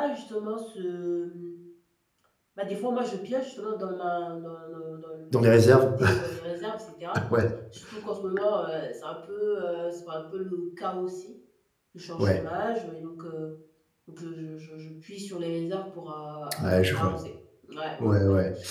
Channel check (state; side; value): identical; both; correlation 1.00